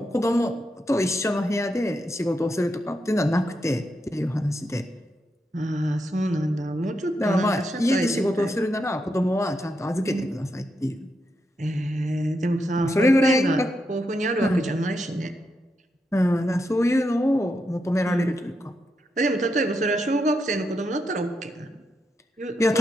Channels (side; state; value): both; normal; correlation 0.84